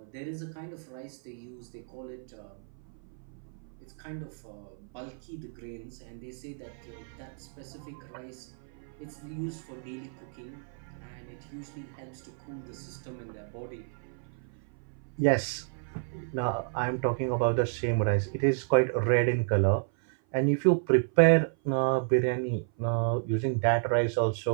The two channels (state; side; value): silent; left; 55 dB below the other